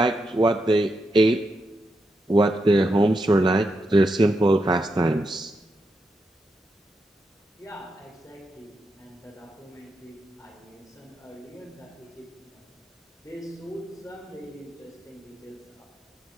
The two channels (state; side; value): normal; both; correlation 0.84